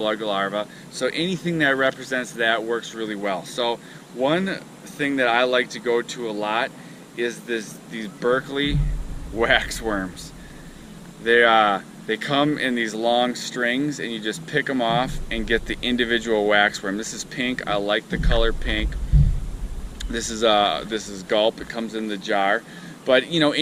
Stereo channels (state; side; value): identical; both; correlation 1.00